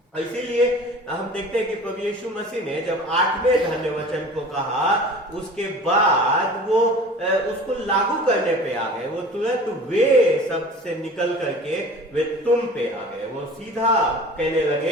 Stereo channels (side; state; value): both; normal; correlation 0.41